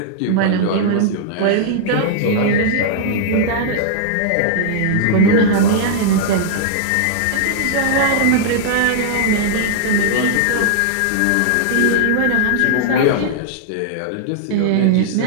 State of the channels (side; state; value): both; different; correlation -0.01